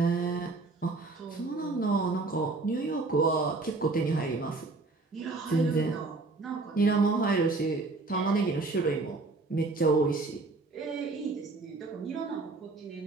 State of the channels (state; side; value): quieter; left; 3.5 dB